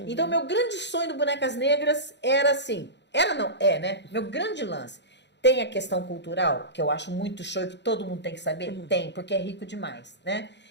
Então, meu grande sonho do Bonecas Negras era assim, né? Meu grande lance. Tem a questão cultural, que eu acho muito show e que todo mundo tem que saber? Tem, porque é rico demais, né?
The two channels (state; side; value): late; right; 0.51 ms